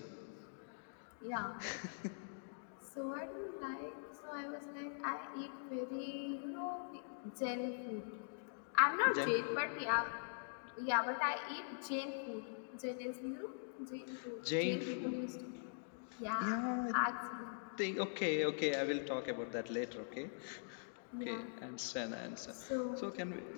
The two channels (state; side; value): silent; right; digital silence